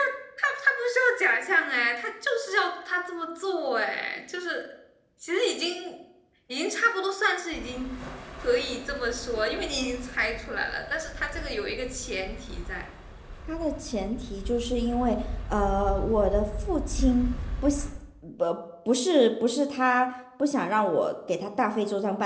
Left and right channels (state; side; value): identical; both; correlation 1.00